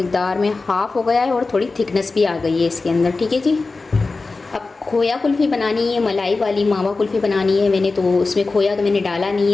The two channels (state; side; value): quieter; right; 3.8 dB